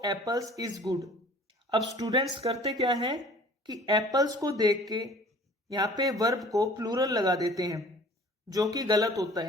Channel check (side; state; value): both; normal; correlation 0.49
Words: apples is good. अब स्टूडेंट्स करते क्या है कि एप्पल्स को देख के यहाँ पे वर्ब को प्लूरल लगा देते हैं, जो कि गलत होता